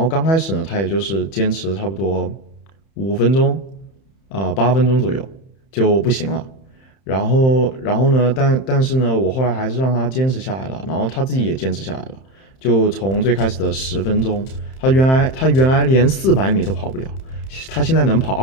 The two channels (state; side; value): late; right; 31 ms